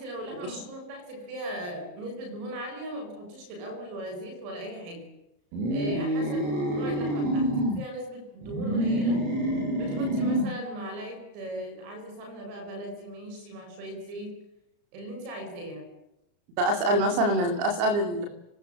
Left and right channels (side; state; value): left; late; 34 ms